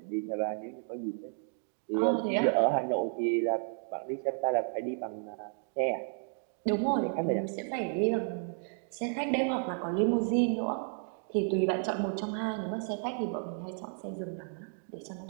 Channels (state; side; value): silent; left; 56 dB below the other